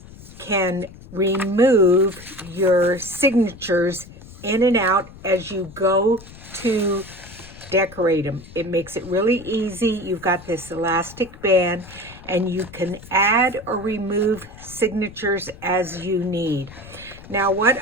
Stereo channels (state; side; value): noise; left; rumble, 18 dB below the sound